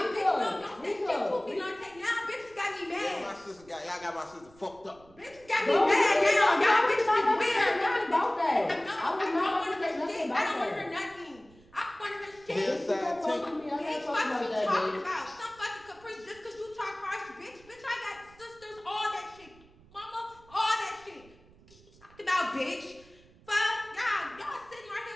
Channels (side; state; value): right; noise; rumble, 26 dB below the sound